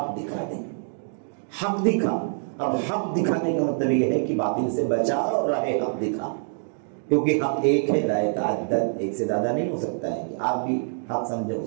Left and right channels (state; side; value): silent; left; 61 dB below the other